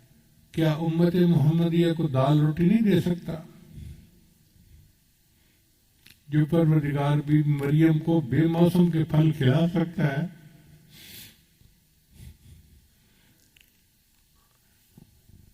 کیا امت محمدیہ کو دال روٹی نہیں دے سکتا؟ جو پروردگار بھی مریم کو بے موسم کے پھل کھلا سکتا ہے،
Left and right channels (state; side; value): identical; both; correlation 1.00